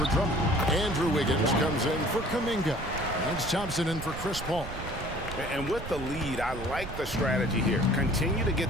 Drummond. Andrew Wiggins comes in for Kuminga. Lance Thompson in for Chris Paul. And with the lead, I like the strategy here. Continue to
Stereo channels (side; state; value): right; noise; rumble, 10 dB below the sound